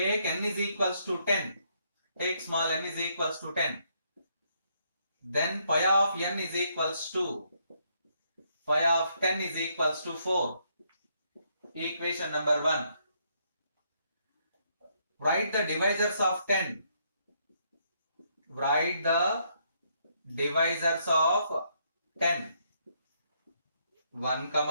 n is equals to 10. Take small n is equals to 10. Then pi of n is equals to, pi of 10 is equals to 4. Equation number 1. Write the divisors of 10. Write the divisors of 10. 1,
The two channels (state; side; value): inverted; both; correlation -0.73